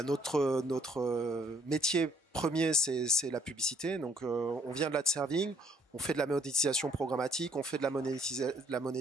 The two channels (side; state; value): both; normal; correlation 0.64